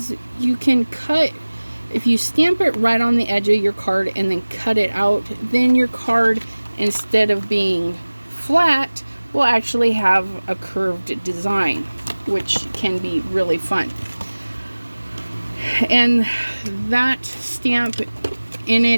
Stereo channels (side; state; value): both; inverted; correlation -1.00